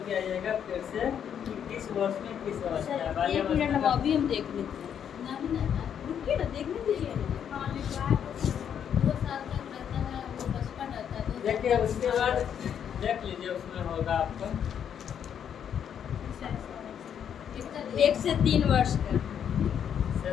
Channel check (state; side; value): quieter; right; 8.6 dB